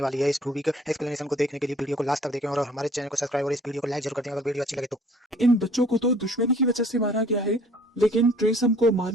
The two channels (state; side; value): normal; both; correlation 0.55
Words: वाली है। इस मूवी के एक्सप्लेनेशन को देखने के लिए वीडियो को लास्ट तक देखें और हमारे चैनल को सब्सक्राइब और इस वीडियो को लाइक जरूर कर दें अगर वीडियो अच्छी लगे तो। इन बच्चों को तो दुश्मनी की वजह से मारा गया है लेकिन ट्रिसम को